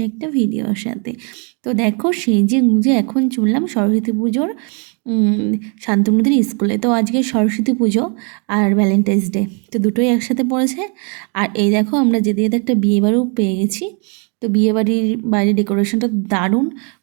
একটা ভিডিওর সাথে। তো দেখো, সেজে গুঁজে এখন চললাম সরস্বতী পুজোর শান্তনুদের স্কুলে। তো আজকে সরস্বতী পুজো আর ভ্যালেন্টাইন্স ডে, তো দুটোই একসাথে পড়েছে। আর এই দেখো, আমরা যেতে যেতে একটা বিয়েবাড়িও পেয়ে গেছি। তো বিয়েবাড়ির বাইরে ডেকোরেশনটা দারুণ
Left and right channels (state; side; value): quieter; left; 36.5 dB